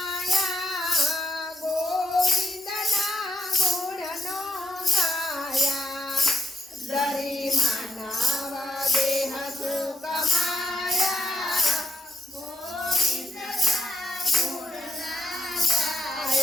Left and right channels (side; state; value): both; normal; correlation 0.77